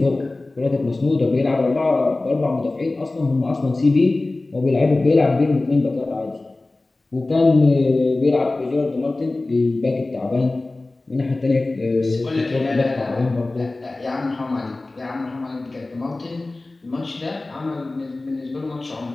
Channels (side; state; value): right; quieter; 3.1 dB